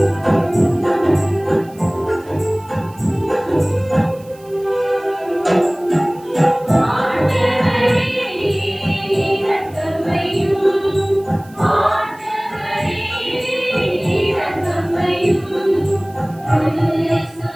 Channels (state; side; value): noise; right; hiss, 26 dB below the sound